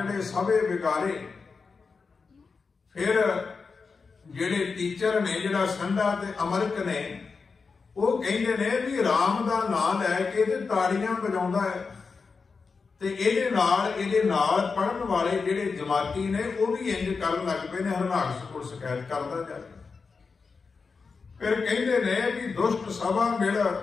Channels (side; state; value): right; quieter; 4.8 dB